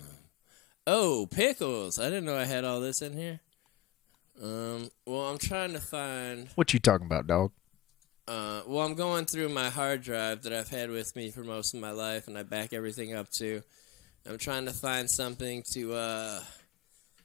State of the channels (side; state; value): right; quieter; 15.5 dB